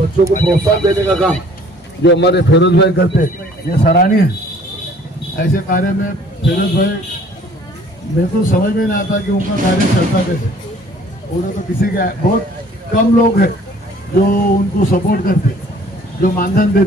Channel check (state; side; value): normal; both; correlation 0.55